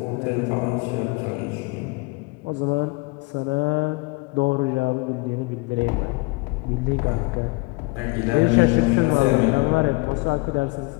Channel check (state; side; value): quieter; right; 26.8 dB